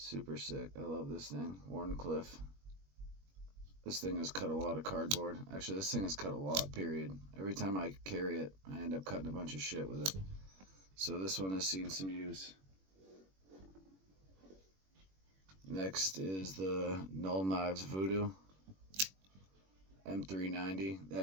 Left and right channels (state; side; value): late; left; 21 ms